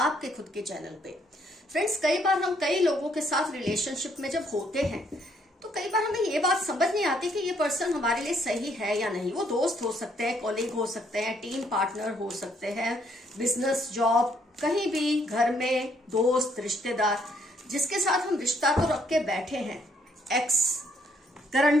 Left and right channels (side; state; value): both; normal; correlation 0.69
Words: खुद के चैनल पे। फ्रेंड्स, कई बार हम कई लोगों के साथ रिलेशनशिप में जब होते हैं तो कई बार हमें ये बात समझ नहीं आती कि ये पर्सन हमारे लिए सही है या नहीं। वो दोस्त हो सकते हैं, कॉलीग हो सकते हैं, टीम पार्टनर हो सकते हैं, बिजनेस, जॉब, कहीं भी, घर में दोस्त, रिश्तेदार, जिसके साथ हम रिश्ता तो रख के बैठे हैं। एक्स,